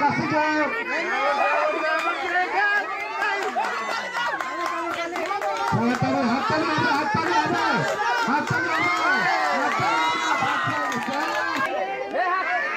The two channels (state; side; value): identical; both; correlation 1.00